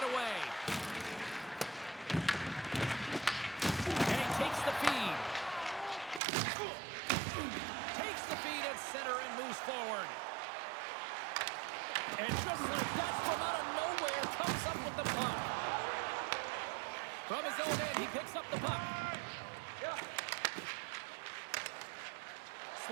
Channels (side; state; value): left; drops out; at 6.2 s